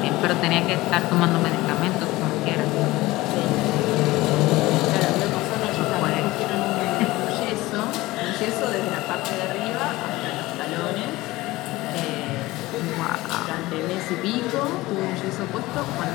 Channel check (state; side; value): quieter; right; 19.1 dB